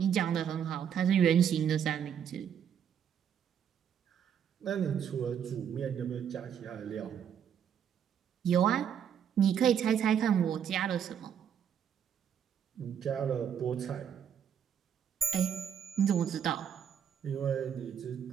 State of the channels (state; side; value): quieter; left; 8.5 dB